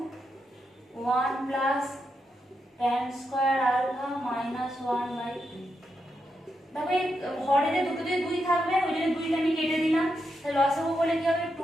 1 plus tan square alpha minus 1/2। তবে হরে যে দুটোতে 2 থাকবে ওই জন্য 2টা আমি কেটে দিলাম, তাহলে লসাগু বলে কি হবে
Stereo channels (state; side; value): normal; both; correlation 0.84